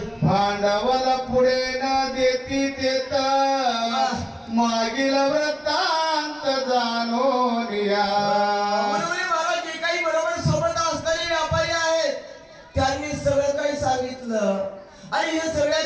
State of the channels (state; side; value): identical; both; correlation 1.00